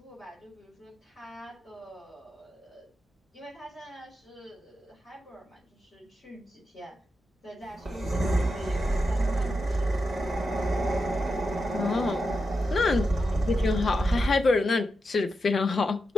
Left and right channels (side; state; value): both; normal; correlation 0.88